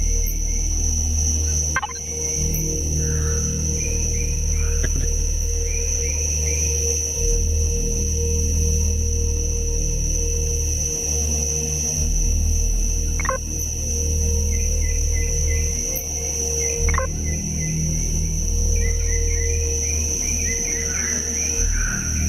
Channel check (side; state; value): left; noise; rumble, 17 dB below the sound